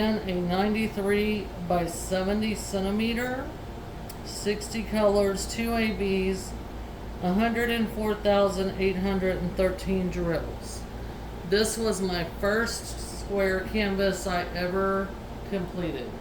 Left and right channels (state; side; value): identical; both; correlation 1.00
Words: a 93 by 70 centimeter, 60 colors, 2 ABs, 104,813 drills. This was my first square canvas I ever completed.